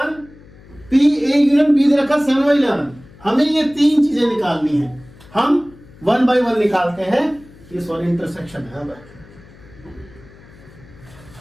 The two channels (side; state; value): left; noise; hum, 23 dB below the sound